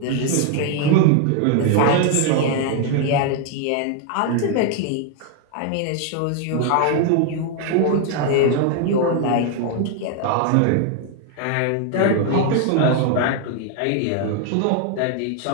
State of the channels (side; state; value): both; different; correlation 0.00